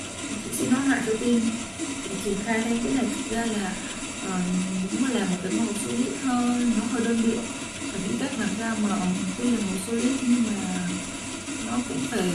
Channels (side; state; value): both; identical; correlation 1.00